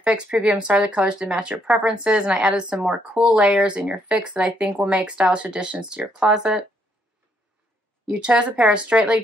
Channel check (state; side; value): normal; both; correlation 0.72